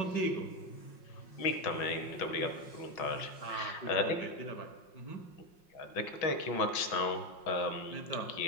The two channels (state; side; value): late; right; 5.6 ms